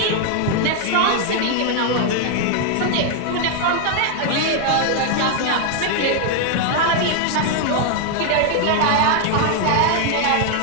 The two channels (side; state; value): both; different; correlation 0.00